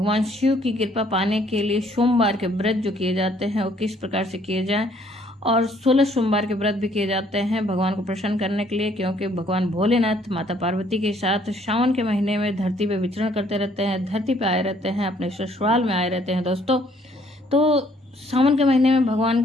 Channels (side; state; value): both; normal; correlation 0.64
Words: शिव की कृपा पाने के लिए सोमवार के व्रत जो किए जाते हैं वो किस प्रकार से किए जाएं, और 16 सोमवार के व्रत भी किए जाते हैं भगवान को प्रसन्न करने के लिए, क्योंकि भगवान भोलेनाथ माता पार्वती के साथ सावन के महीने में धरती पे विचरण करते रहते हैं, धरती पे आए रहते हैं, अपने ससुराल में आए रहते हैं। दोस्तों तो सावन के महीने में भगवान